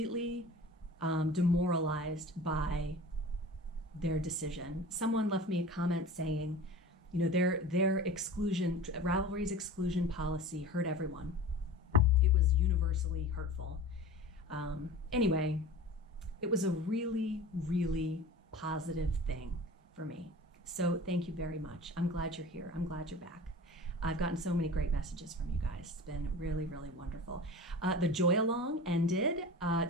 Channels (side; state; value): both; normal; correlation 0.37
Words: demoralized by their decision. Someone left me a comment saying, their exclusion, Ravelry's exclusion policy hurt everyone. It was universally hurtful. Anyway, it was a really, really positive thing for me. So thank you very much. I'm glad you're here. I'm glad you're back. I've gotten so many great messages from you guys. It's been really, really wonderful. The Joy Along ended.